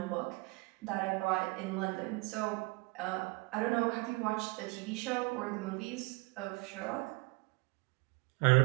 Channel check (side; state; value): left; quieter; 26.6 dB